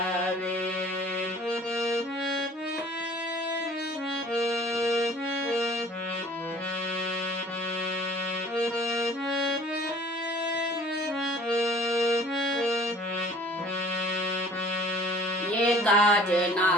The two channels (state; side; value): normal; both; correlation 0.50